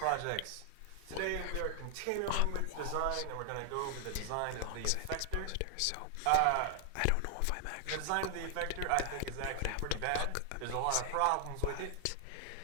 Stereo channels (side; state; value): both; different; correlation 0.00